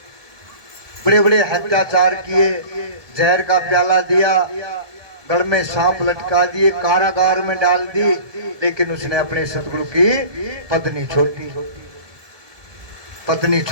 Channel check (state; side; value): late; left; 1.7 ms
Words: बड़े बड़े अत्याचार किए, जहर का प्याला दिया, गढ़ में सांप लटका दिए, कारागार में डाल दी, लेकिन उसने अपने सतगुरु की पत्नी